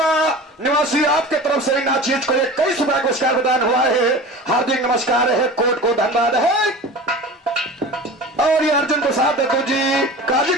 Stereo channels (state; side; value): normal; both; correlation 0.35